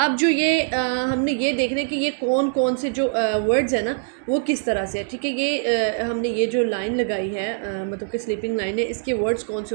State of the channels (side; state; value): left; silent; 64 dB below the other